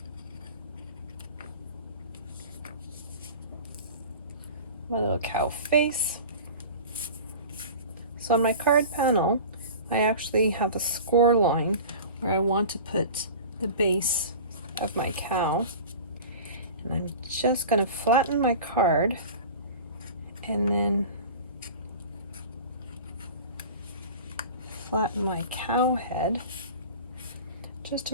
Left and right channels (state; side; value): inverted; both; correlation -0.37